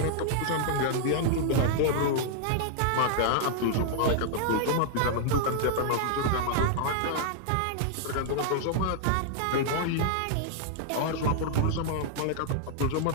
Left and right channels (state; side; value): different; both; correlation -0.01